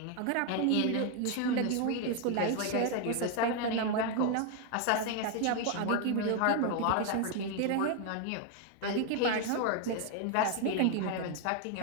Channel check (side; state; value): both; different; correlation 0.01